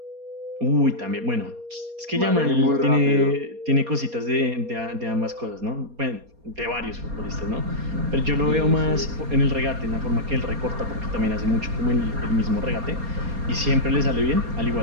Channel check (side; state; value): left; late; 4.2 ms